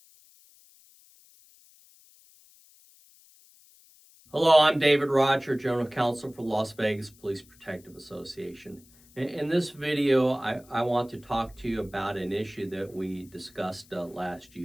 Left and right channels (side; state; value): left; noise; hiss, 27 dB below the sound